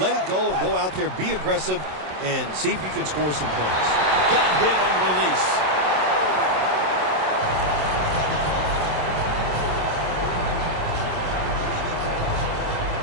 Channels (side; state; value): left; late; 27 ms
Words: let it go, and go out there, be aggressive, and see if you can score some points. Got hit on release.